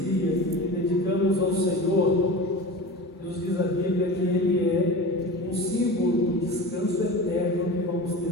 que dedicamos ao Senhor, nos diz a Bíblia que Ele é um símbolo do descanso eterno que vamos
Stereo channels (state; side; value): normal; both; correlation 0.32